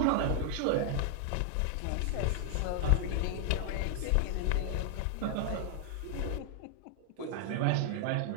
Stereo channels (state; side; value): different; both; correlation 0.00